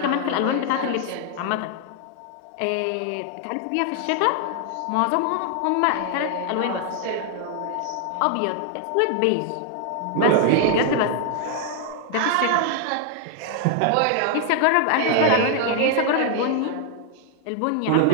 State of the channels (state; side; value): different; both; correlation 0.00